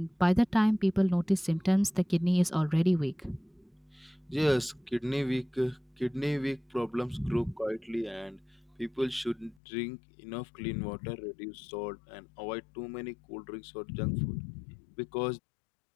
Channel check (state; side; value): drops out; right; at 9.6 s